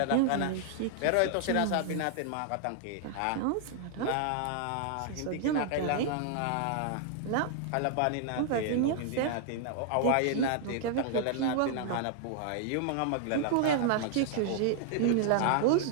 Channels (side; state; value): both; different; correlation -0.01